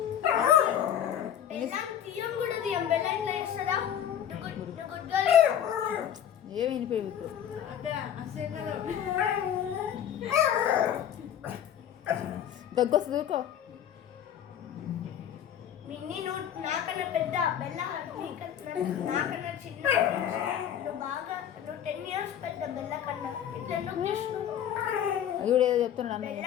ఏమి వినిపోయి ఇప్పుడు దగ్గొస్తుంది దూకో నాకన్నా పెద్ద బెల్ల నాకన్నా చిన్న బాగా 10 years పెద్ద బెల్ల కన్నా ఇట్లా అది కూడా ఏదో చెప్తున్నాడు అన్న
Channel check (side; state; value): right; quieter; 9.8 dB